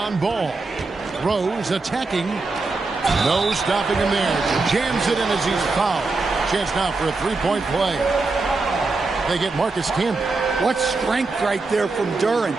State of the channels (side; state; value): left; quieter; 3.7 dB